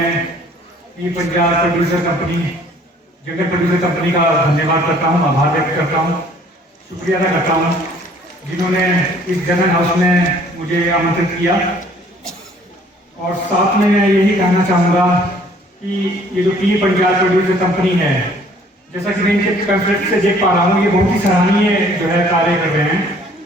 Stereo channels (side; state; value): both; normal; correlation 0.57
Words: पीर पंजाल प्रोड्यूसर कंपनी जंगल प्रोड्यूसर कंपनी का धन्यवाद करता हूँ, आभार व्यक्त करता हूँ, शुक्रिया अदा करता हूँ जिन्होंने इस जनरल हाउस में मुझे आमंत्रित किया। और साथ में मैं यही कहना चाहूँगा कि ये जो पीर पंजाल प्रोड्यूसर कंपनी है, जैसा कि मैं इनके पैम्फलेट से देख पा रहा हूँ, ये बहुत ही सराहनीय जो है कार्य कर रहे हैं।